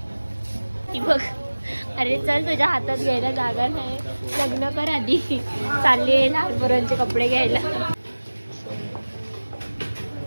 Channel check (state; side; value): inverted; both; correlation -1.00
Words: ती बघ. अरे चल, तुझ्या हातात घ्यायला जागा नाही. लग्न कर आधी. चालली लहान पोरांचे कपडे घ्यायला.